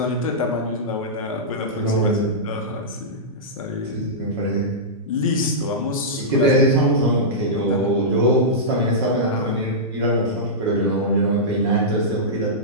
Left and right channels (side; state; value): both; normal; correlation -0.14